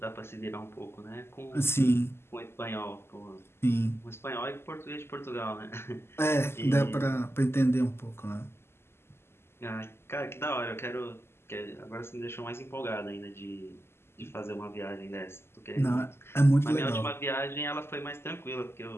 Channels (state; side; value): late; right; 0.12 ms